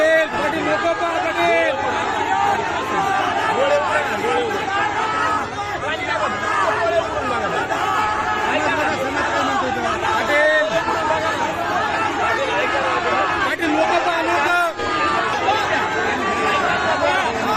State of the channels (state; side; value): identical; both; correlation 1.00